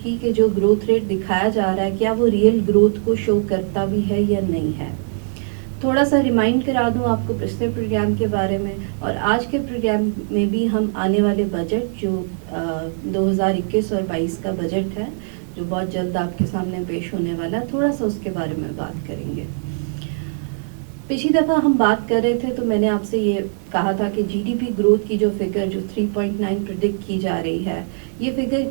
کی کہ جو گروتھ ریٹ دکھایا جا رہا ہے کیا وہ ریئل گروتھ کو شو کرتا بھی ہے یا نہیں ہے. تھوڑا سا ریمائنڈ کرا دوں آپ کو پچھلے پروگرام کے بارے میں، اور آج کے پروگرام میں بھی ہم آنے والے بجٹ جو 2021 اور 22 کا بجٹ ہے جو بہت جلد آپ کے سامنے پیش ہونے والا ہے، تھوڑا سا اس کے بارے میں بات کریں گے. پچھلی دفعہ ہم بات کر رہے تھے تو میں نے آپ سے یہ کہا تھا کہ جی ڈی پی گروتھ کی جو فگر جو 3.9 پریڈکٹ کی جا رہی ہے، یہ فگر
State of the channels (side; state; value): left; silent; digital silence